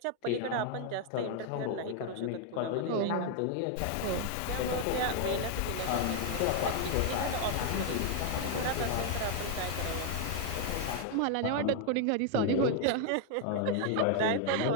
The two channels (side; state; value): both; different; correlation 0.00